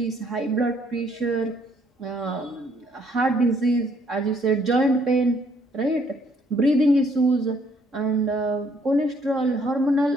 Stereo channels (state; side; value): normal; both; correlation 0.66